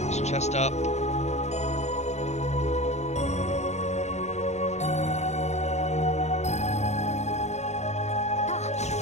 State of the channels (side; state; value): right; late; 0.33 ms